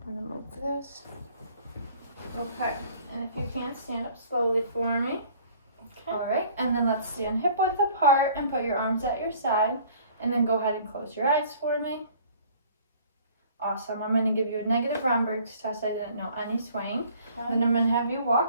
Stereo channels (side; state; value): both; inverted; correlation -0.53